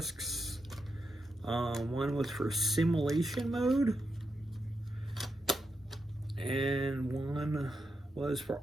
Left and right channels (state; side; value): normal; both; correlation 0.85